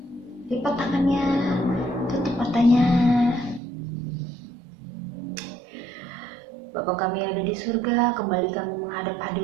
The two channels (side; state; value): left; drops out; at 3.6 s